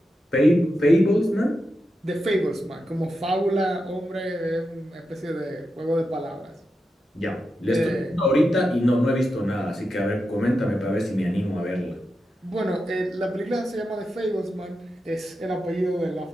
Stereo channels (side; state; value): both; normal; correlation 0.88